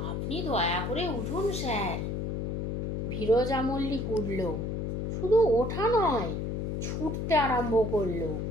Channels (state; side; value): noise; left; hum, 2 dB below the sound